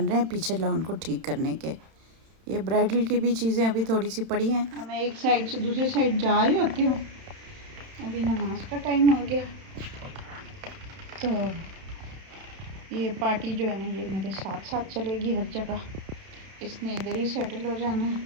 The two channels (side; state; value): left; late; 31 ms